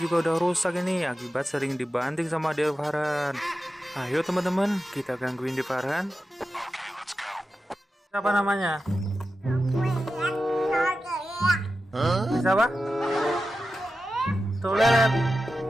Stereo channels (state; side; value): normal; both; correlation 0.92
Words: udah rusak ini akibat sering dibanting sama Devaran. Ayo teman-teman, kita gangguin Devaran. Siapa namanya? Bisa apa? Toilet.